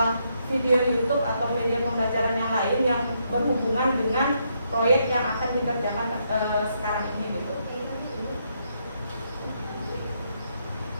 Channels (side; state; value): both; inverted; correlation -0.77